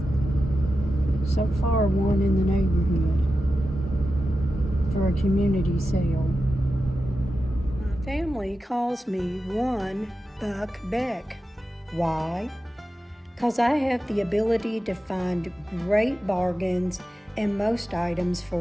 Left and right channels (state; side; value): normal; both; correlation 0.91